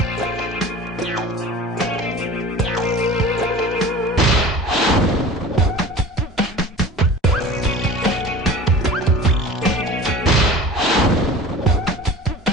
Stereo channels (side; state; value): both; normal; correlation 0.38